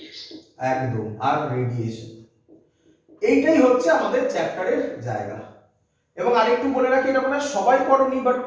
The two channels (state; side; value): identical; both; correlation 1.00